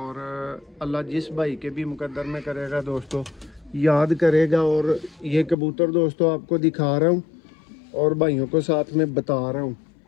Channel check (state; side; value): drops out; right; at 5.6 s